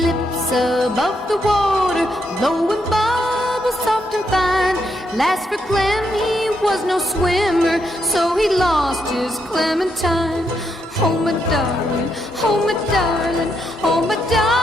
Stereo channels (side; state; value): both; normal; correlation 0.79